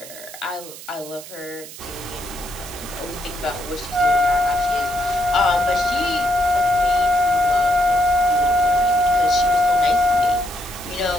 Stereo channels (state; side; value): noise; right; hiss, 15 dB below the sound